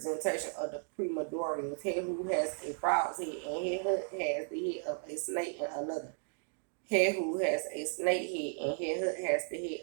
of the primordials. Hehu has a frog's head, and Hehud has the head of a snake and another. Hehu has a snake head, and Hehud has the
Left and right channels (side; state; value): left; silent; 55 dB below the other